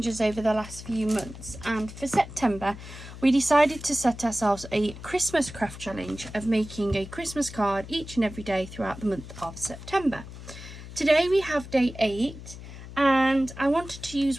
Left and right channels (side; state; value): left; noise; hum, 13 dB below the sound